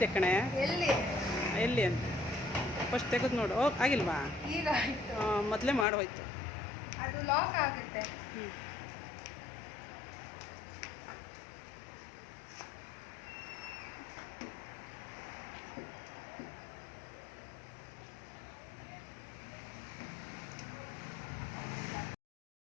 ಕಣೆ. ಎಲ್ಲಿ ಎಲ್ಲಿ ಅಂತ ಫಸ್ಟ್ ತೆಗೆದು ನೋಡು. ಆಗಿಲ್ವಾ? ಈಗ ಆಯಿತು, ಮೊದಲೇ ಮಾಡೋಯ್ತು. ಅದು ಲಾಕ್ ಆಗುತ್ತೆ.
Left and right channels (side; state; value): right; drops out; at 5.9 s